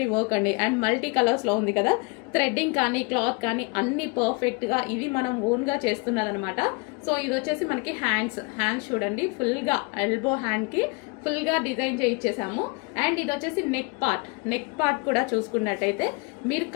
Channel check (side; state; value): right; quieter; 29.2 dB